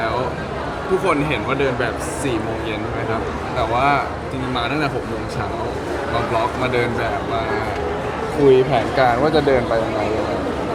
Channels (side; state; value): both; identical; correlation 1.00